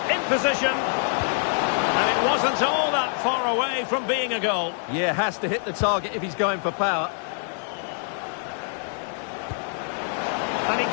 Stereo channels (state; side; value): silent; right; 61 dB below the other